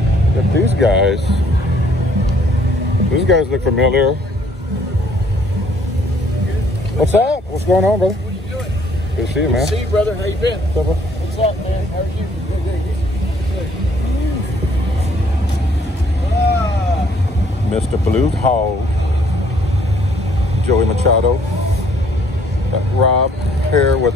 But these guys look familiar. What's up? What's going on, brother? What are you doing? Good to see you, man. Good to see you, brother. How you been? What's up, bro? What's up, man? How are you? Mr. Blue Hog, Joey Machado, got Rob here with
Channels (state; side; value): normal; both; correlation 0.62